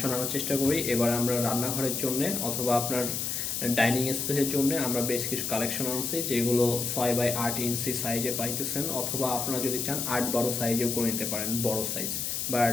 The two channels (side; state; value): left; noise; hiss, 2 dB below the sound